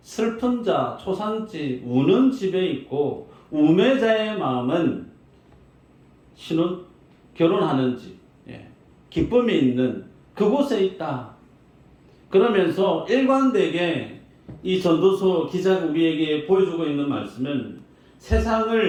슬픈 자, 초상집, 우는 집에 있고 우매자의 마음은 결혼하는 집, 기쁨이 있는 그곳에 있다. 그러면서 일관되게 이 전도서 기자가 우리에게 보여주고 있는 말씀은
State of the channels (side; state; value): both; identical; correlation 1.00